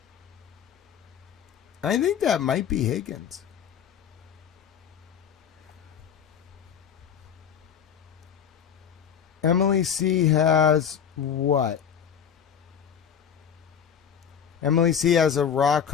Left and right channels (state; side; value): quieter; right; 8.2 dB